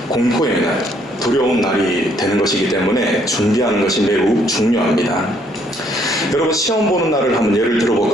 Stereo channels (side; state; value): both; normal; correlation 0.67